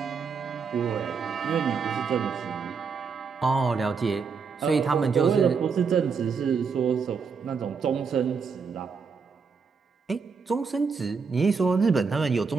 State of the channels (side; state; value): left; quieter; 5.5 dB